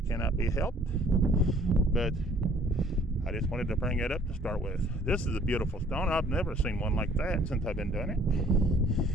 cannot be helped, but I just wanted to bring it up to start with. This is a beautiful stone. I've never seen one like that since I've been doing it.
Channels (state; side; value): normal; both; correlation 0.57